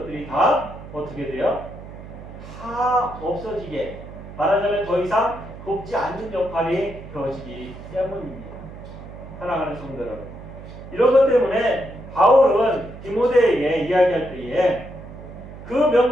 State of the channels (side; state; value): right; noise; hum, 14 dB below the sound